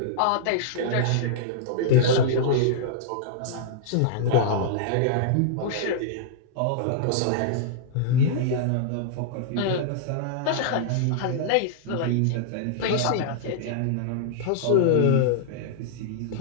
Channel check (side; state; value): both; different; correlation -0.02